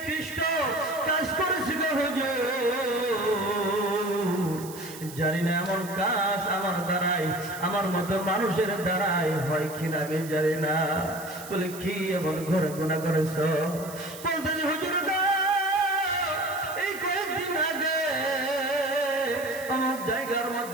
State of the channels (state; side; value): noise; right; hiss, 15 dB below the sound